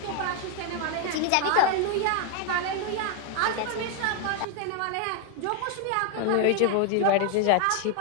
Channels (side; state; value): both; different; correlation 0.00